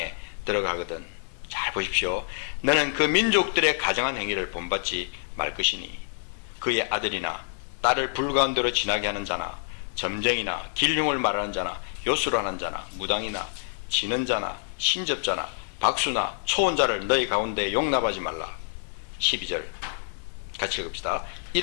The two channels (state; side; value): silent; right; 60 dB below the other